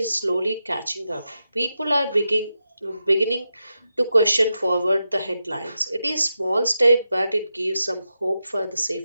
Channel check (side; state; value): both; inverted; correlation -0.88